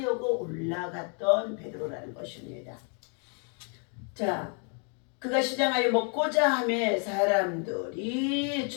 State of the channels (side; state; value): right; quieter; 38.9 dB